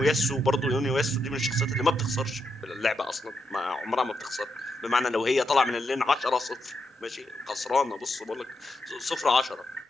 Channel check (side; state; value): both; normal; correlation 0.83